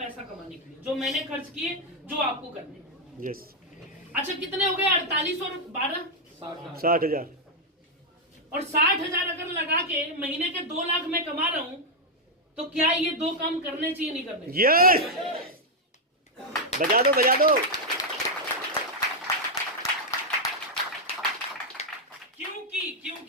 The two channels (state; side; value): normal; both; correlation -0.01